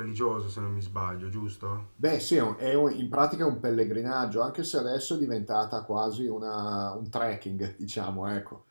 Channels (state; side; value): inverted; both; correlation -1.00